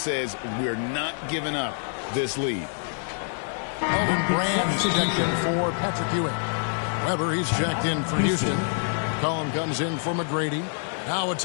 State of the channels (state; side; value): silent; right; digital silence